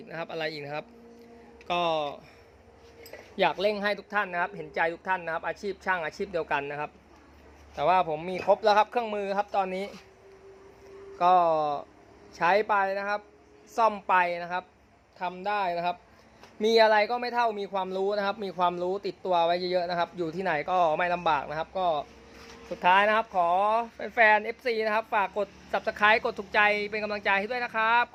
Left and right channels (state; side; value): identical; both; correlation 1.00